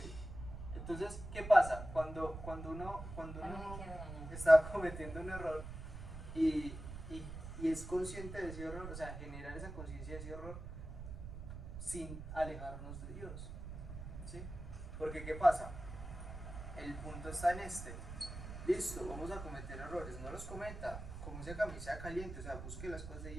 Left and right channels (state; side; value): noise; right; rumble, 9 dB below the sound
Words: Entonces, ¿qué pasa? Cuando uno está cometiendo un error y es consciente de ese error, o sea, generar esa conciencia de ese error sin alejarnos de Dios, ¿sí? Porque ¿qué pasa? El punto está en este. Listo, vamos a cometer errores, no los cometa, como esa camisa caliente, o sea, busque las cosas de